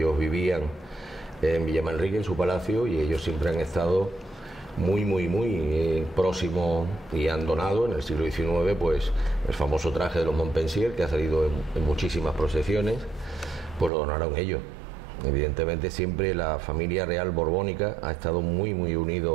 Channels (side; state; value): left; drops out; at 13.9 s